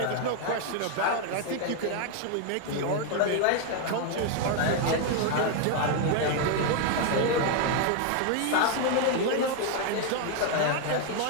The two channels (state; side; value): different; both; correlation 0.01